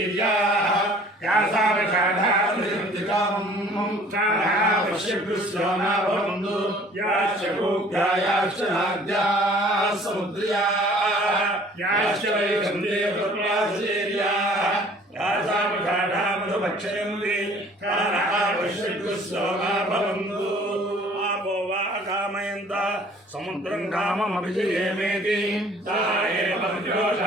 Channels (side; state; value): both; normal; correlation 0.52